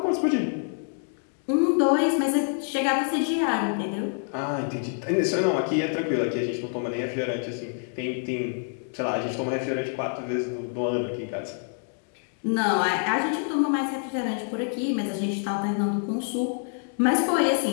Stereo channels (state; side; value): silent; right; 58 dB below the other